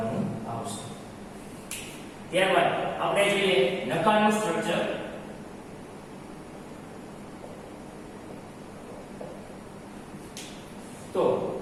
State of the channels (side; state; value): both; identical; correlation 1.00